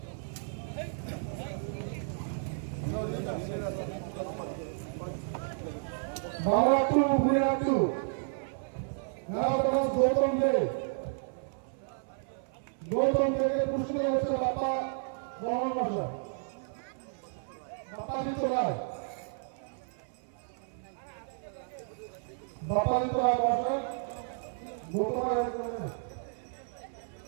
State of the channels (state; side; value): silent; left; 56 dB below the other